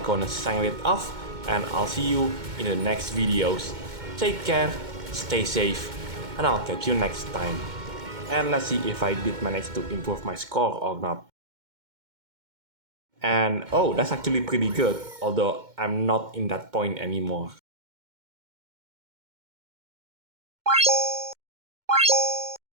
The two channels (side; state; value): left; late; 2.1 ms